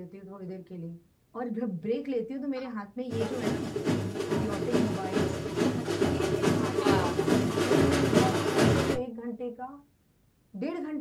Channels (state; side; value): identical; both; correlation 1.00